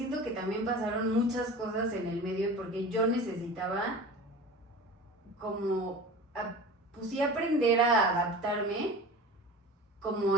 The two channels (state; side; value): normal; both; correlation 0.36